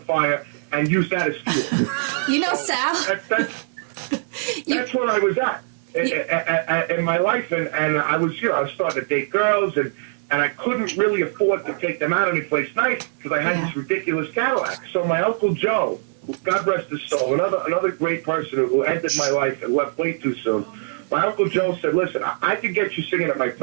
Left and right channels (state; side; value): silent; left; digital silence